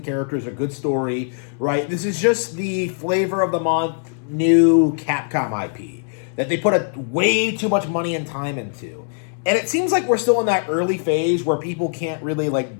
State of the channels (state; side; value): silent; right; 65 dB below the other